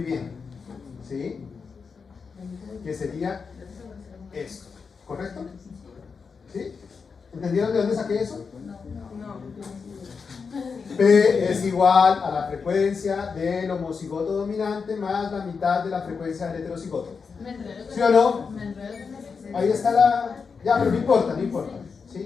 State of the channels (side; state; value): right; quieter; 5.4 dB